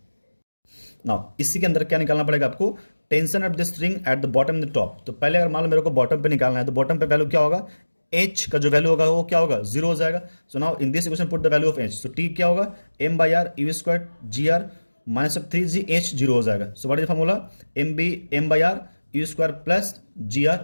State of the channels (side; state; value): both; inverted; correlation -1.00